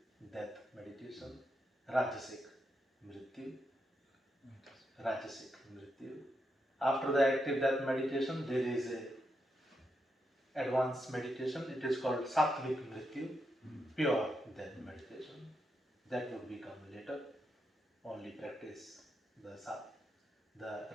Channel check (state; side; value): normal; both; correlation 0.83